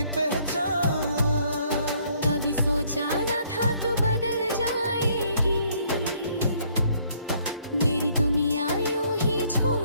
पहचान। कभी सोचा ना था तू बदल जाएगी, मेरी दुनिया यूं ही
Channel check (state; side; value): inverted; both; correlation -0.65